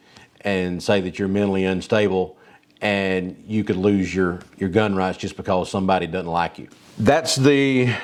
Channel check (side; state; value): both; identical; correlation 1.00